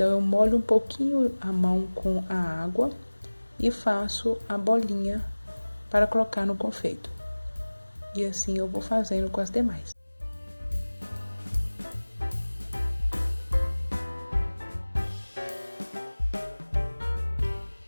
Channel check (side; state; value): both; inverted; correlation -1.00